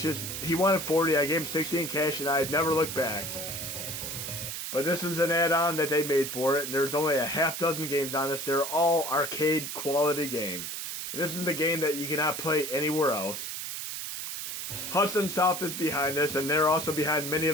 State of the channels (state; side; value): noise; right; hiss, 5 dB below the sound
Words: is, he wanted 40, I gave him 60 in cash, and I've never looked back. But this is an add-on that they made for it, and there's only a half dozen games on this. They're all arcade quality games. And this is the game that you cannot play anywhere else. Hudson Soft is behind this, and they're also behind many